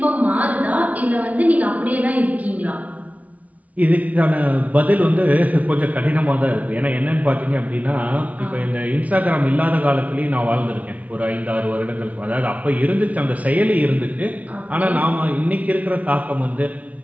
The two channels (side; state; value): left; late; 0.070 ms